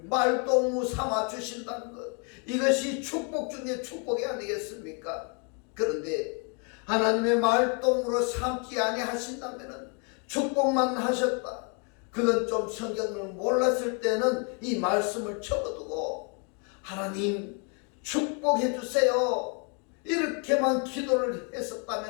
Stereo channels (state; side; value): quieter; right; 37.2 dB